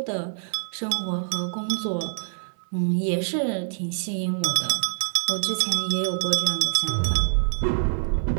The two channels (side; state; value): left; silent; digital silence